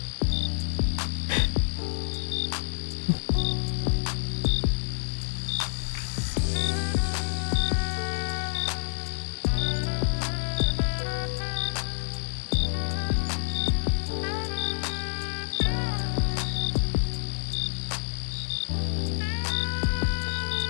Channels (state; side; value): silent; right; digital silence